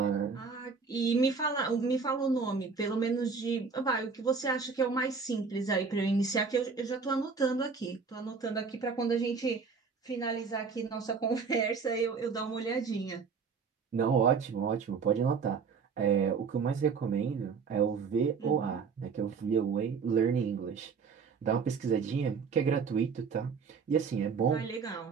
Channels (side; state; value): left; quieter; 5.4 dB